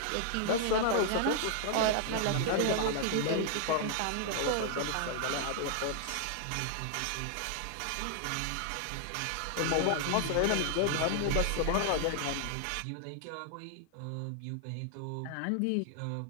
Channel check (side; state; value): both; different; correlation 0.00